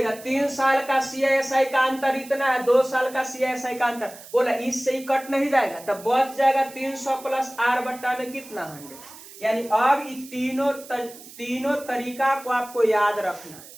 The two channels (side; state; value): right; noise; hiss, 18 dB below the sound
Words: 3 साल का सीआईएसआई का अंतर इतना है, 2 साल का सीआईएसआई का अंतर, बोला इससे ही कट नहीं जाएगा, तब बच जाएगा 300 प्लस आर बट्टा में कितना, 100। यानी अब तीनों तरीका को आपको याद रखना है,